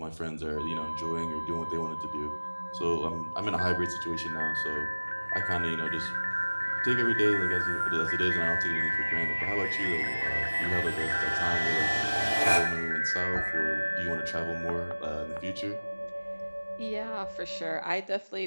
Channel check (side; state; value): both; inverted; correlation -1.00